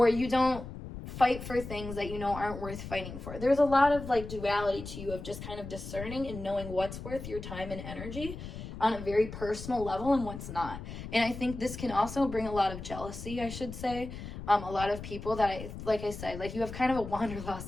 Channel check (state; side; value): noise; left; rumble, 10 dB below the sound